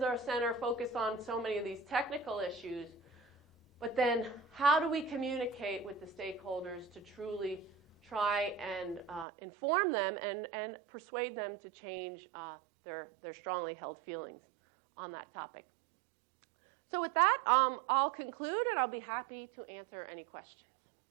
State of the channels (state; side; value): drops out; left; at 9.2 s